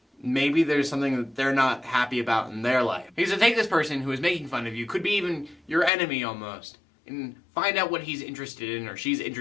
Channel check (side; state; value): right; drops out; at 5.9 s